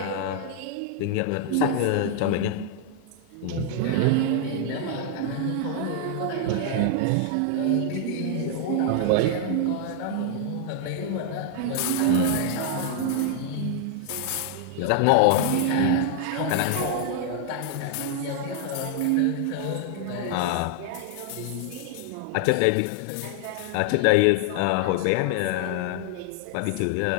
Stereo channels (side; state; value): both; different; correlation 0.00